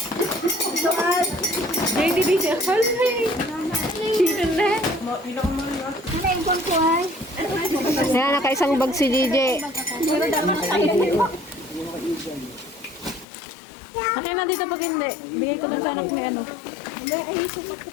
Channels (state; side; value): drops out; right; at 13.2 s